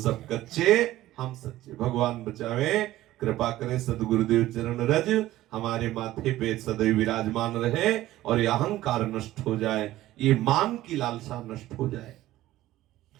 कच्चे, हम सच्चे। भगवान बचावे, कृपा करें सदगुरुदेव चरण रज हमारे माथे पे सदैव विराजमान रहे और ये अहंकार नष्ट हो जाए, ये मान की लालसा नष्ट हो जाए।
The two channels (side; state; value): left; quieter; 15.4 dB